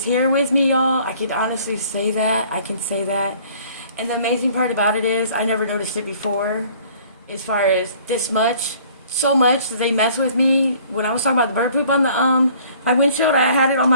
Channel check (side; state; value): both; inverted; correlation -0.55